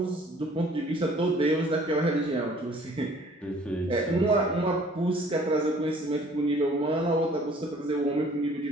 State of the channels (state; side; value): normal; both; correlation 0.55